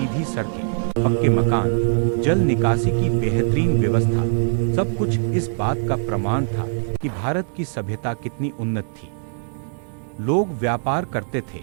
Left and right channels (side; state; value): left; silent; 61 dB below the other